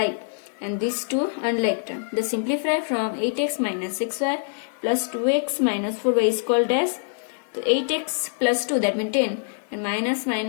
and these two unlike term. The simplify from 8x minus 6y plus 2x minus 4y is called dash. So 8x plus 2, that means 10, and minus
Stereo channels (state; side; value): silent; right; digital silence